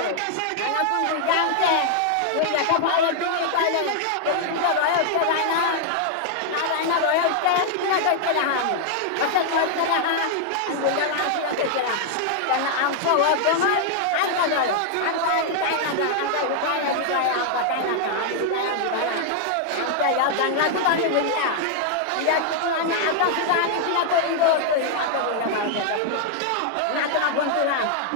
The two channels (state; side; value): different; both; correlation 0.00